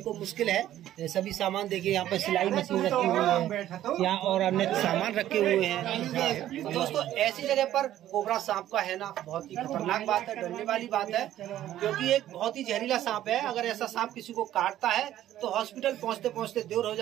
को मुश्किल है। सभी सामान देखिए, यहाँ पर सिलाई मशीन रखी हुई है, यहाँ और अन्य सामान रखे हुए हैं। तो दोस्तों ऐसी जगह पर कोबरा सांप का है ना बहुत ही खतरनाक बात है, डरने वाली बात है, क्योंकि एक बहुत ही जहरीला सांप है। अगर ऐसा सांप किसी को काटता है तो हॉस्पिटल पहुँचते पहुँचते देर हो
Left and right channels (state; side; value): quieter; left; 12.7 dB